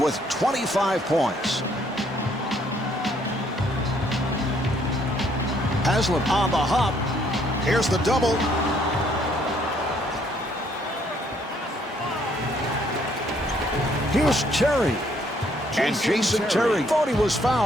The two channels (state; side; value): normal; both; correlation 0.67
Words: 25 points. Haslem on the hop. Here's the double. Here's Terry. And Jason Terry thought he was